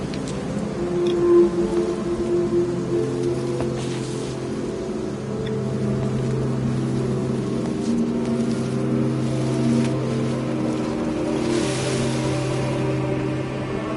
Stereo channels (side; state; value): both; identical; correlation 1.00